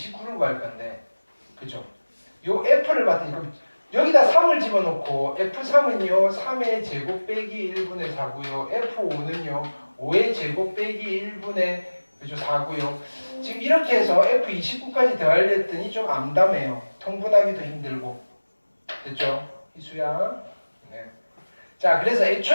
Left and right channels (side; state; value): both; inverted; correlation -1.00